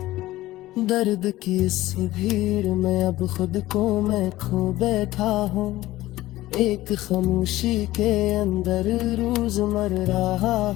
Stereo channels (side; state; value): right; quieter; 16.6 dB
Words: दर्द की इस भीड़ में अब खुद को मैं खो बैठा हूँ। एक खामोशी के अंदर रोज मर रहा